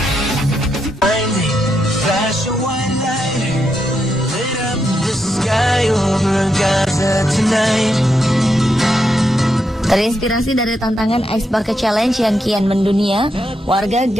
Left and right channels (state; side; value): normal; both; correlation 0.82